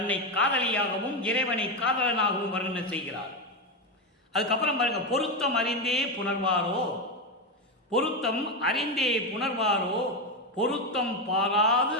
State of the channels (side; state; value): both; normal; correlation 0.11